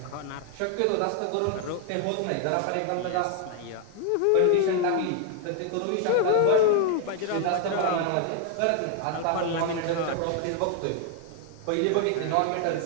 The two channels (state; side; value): different; both; correlation 0.00